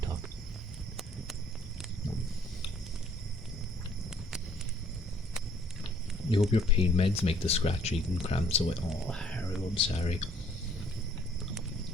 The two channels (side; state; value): both; normal; correlation 0.61